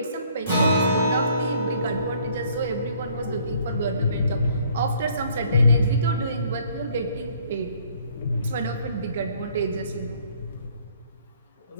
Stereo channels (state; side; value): inverted; both; correlation -0.61